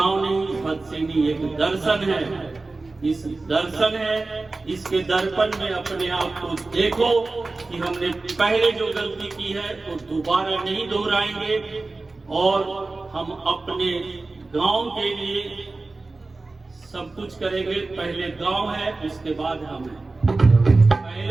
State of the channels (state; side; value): quieter; left; 3.4 dB